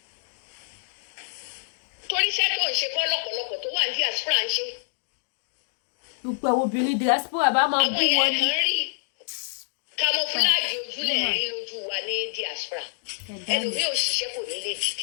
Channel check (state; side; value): silent; right; digital silence